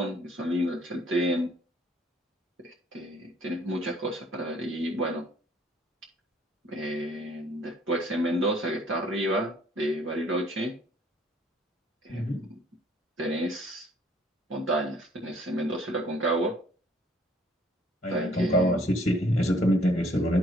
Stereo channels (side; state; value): both; normal; correlation 0.61